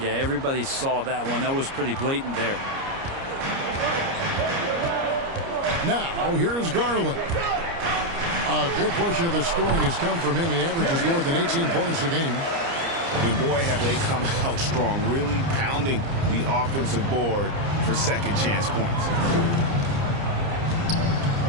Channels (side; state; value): left; late; 29 ms